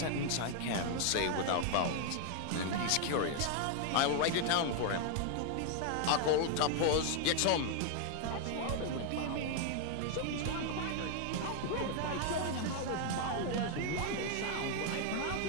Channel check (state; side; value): different; both; correlation 0.00